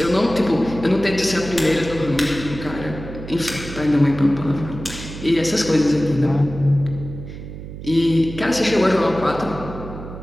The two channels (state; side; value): noise; right; hum, 11 dB below the sound